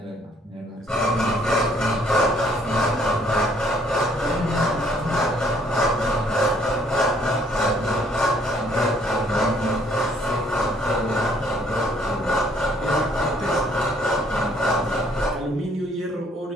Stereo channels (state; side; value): normal; both; correlation 0.63